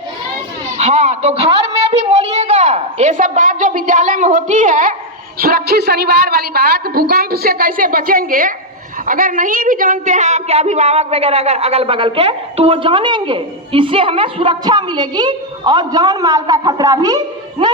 हाँ, तो घर में भी बोलिएगा ये सब बात जो विद्यालय में होती है, सुरक्षित शनिवार वाली बात, भूकंप से कैसे बचेंगे, अगर नहीं भी जानते हैं आपके अभिभावक वगैरह अगर अगल बगल के, तो वो जानेंगे। इससे हमें सुरक्षा मिलेगी और जान माल का खतरा भी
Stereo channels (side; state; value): both; normal; correlation 0.00